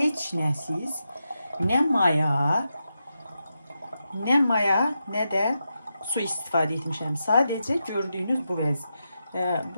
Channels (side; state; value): both; inverted; correlation -0.88